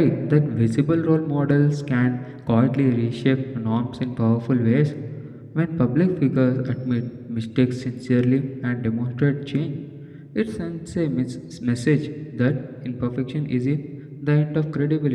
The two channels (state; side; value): identical; both; correlation 1.00